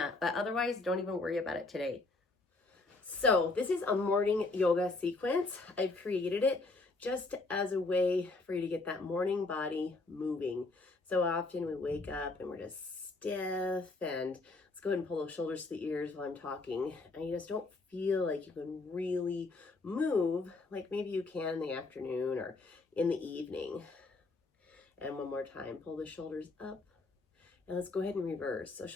but otherwise, don't even worry about it today. So this is a morning yoga sequence. I've created it just as a way for you to get that morning body moving. So often we wake up and we're just stiff, and let's go ahead and pull those shoulders to the ears while I'm talking, and you just don't feel like you can really move like maybe you can in the afternoon or in the evening. And one more time, pull the shoulders up, and let's go ahead and reverse. So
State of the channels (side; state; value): right; quieter; 3.4 dB